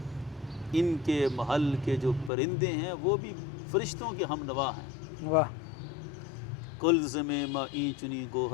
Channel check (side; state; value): right; drops out; at 2.3 s